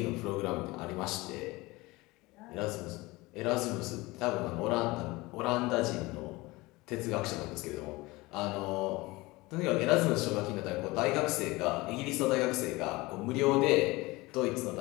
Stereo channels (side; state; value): right; quieter; 21.8 dB